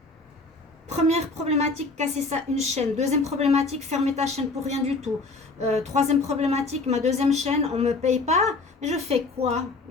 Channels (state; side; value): quieter; right; 3.6 dB